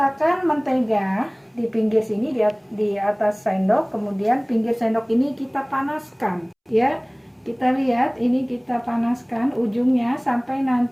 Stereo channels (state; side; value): identical; both; correlation 1.00